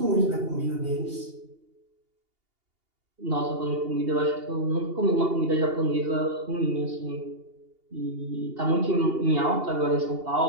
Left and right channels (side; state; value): left; late; 2.8 ms